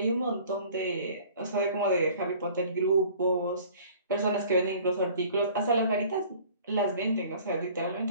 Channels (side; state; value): both; inverted; correlation -0.49